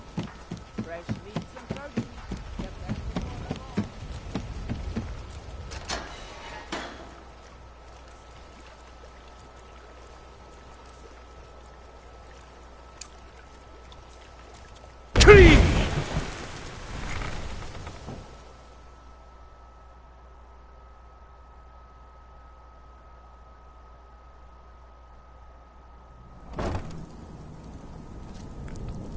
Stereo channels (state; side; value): identical; both; correlation 1.00